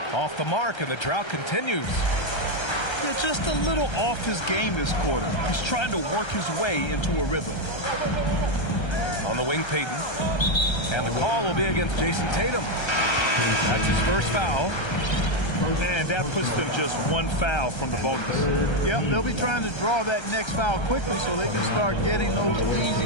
Off the mark, and the drought continues. Yeah, just a little off his game this quarter. He's trying to work his way into a rhythm. On the wing, Peyton. And the call will be against Jason Tatum. That's his first foul. And that puts them just one foul from the bonus. Yep, they'll be trying to draw that next foul quickly so they can start getting those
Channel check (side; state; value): right; late; 1.3 ms